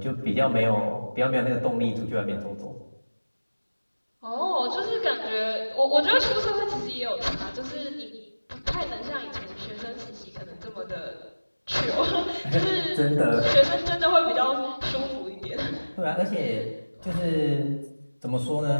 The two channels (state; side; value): inverted; both; correlation -1.00